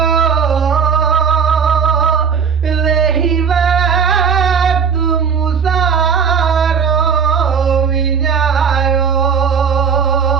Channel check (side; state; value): left; quieter; 6.4 dB